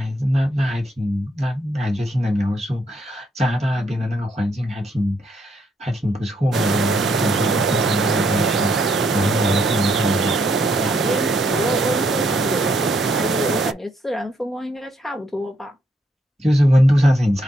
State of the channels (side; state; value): both; normal; correlation 0.74